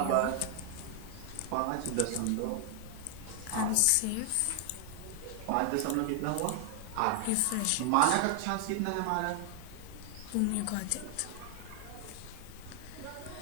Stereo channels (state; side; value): different; both; correlation 0.00